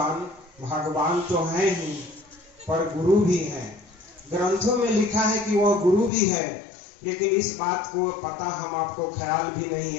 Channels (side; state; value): right; drops out; at 6.1 s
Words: भगवान तो है ही पर गुरु भी है। ग्रंथों में लिखा है कि वह गुरु भी है, लेकिन इस बात को पता हम आपको ख्याल भी नहीं